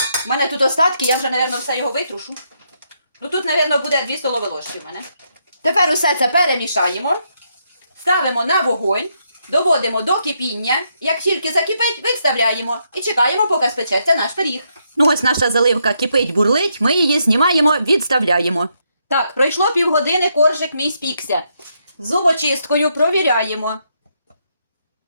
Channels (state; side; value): inverted; both; correlation -0.78